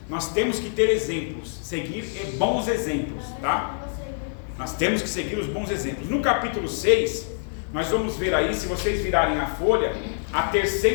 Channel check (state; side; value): silent; right; digital silence